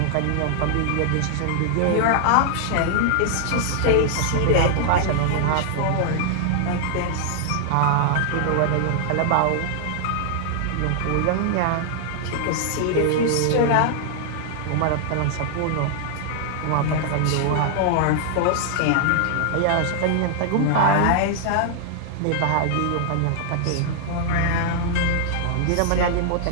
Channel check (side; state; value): both; different; correlation 0.00